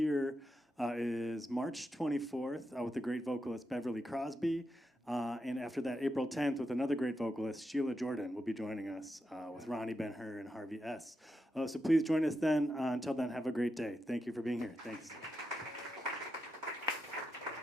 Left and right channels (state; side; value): normal; both; correlation 0.86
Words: is March 24th with the great vocalist Beverly Crosby. And after that, April 10th, with another great vocalist, Sheila Jordan, will be joining us with Ronnie Ben-Hur and Harvey S. So please join us then. Until then, have a great day. Thank you for being here. Thanks.